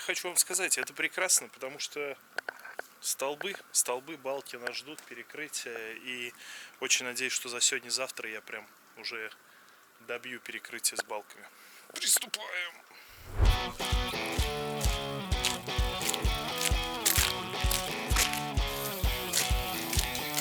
вам сказать, это прекрасно, потому что столбы, балки нас ждут, перекрытия. И очень надеюсь, что за сегодня-завтра я прям уже добью перекрытие с балками. Приступаем!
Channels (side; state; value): both; identical; correlation 1.00